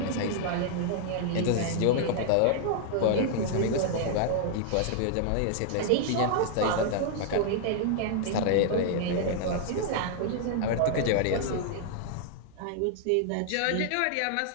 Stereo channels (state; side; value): different; both; correlation -0.01